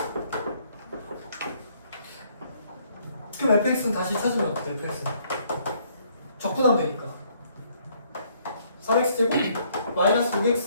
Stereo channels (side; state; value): both; inverted; correlation -0.66